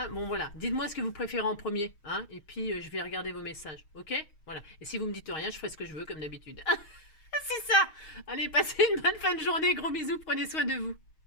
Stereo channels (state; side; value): late; right; 6.4 ms